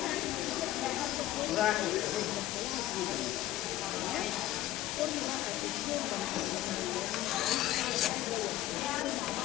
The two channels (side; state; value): right; quieter; 14.8 dB